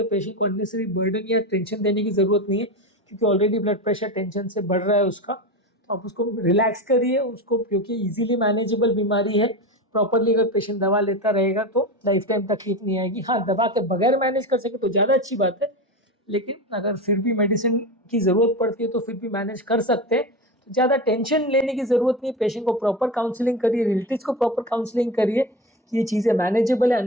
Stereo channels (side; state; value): both; normal; correlation 0.23